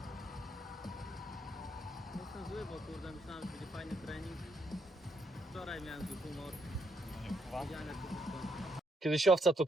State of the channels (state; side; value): normal; both; correlation 0.75